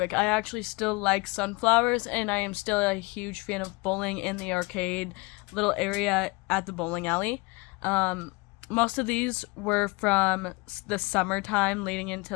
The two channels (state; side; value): quieter; right; 26.2 dB